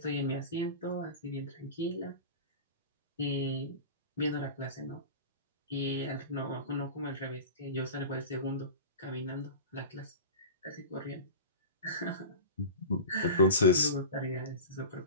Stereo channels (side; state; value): both; inverted; correlation -0.31